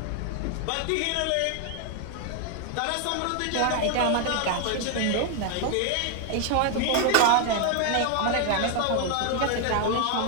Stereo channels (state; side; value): different; both; correlation 0.00